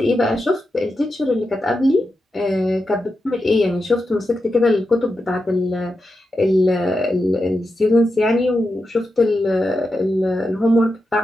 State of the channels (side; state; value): both; normal; correlation 0.88